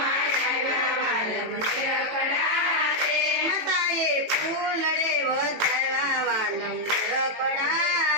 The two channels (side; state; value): left; late; 18 ms